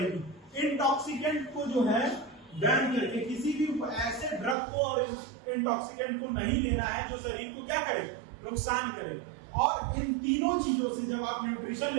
इंटॉक्सिकेंट को जो है बैन करके, किसी भी ऐसे ड्रग को और इंटॉक्सिकेंट को नहीं लेना है जो शरीर को क्या करे, नुकसान करे। और इन तीनों चीजों से जब आप न्यूट्रिशन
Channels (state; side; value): drops out; left; at 4.5 s